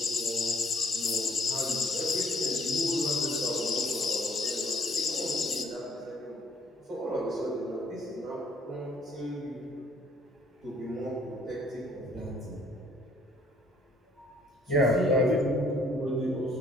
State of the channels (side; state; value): both; normal; correlation 0.62